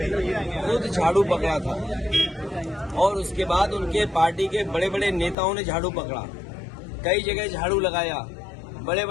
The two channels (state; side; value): drops out; right; at 5.4 s